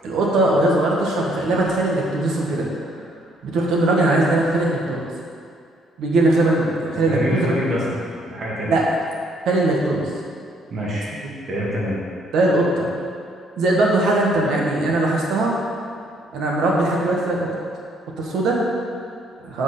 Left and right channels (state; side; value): normal; both; correlation 0.67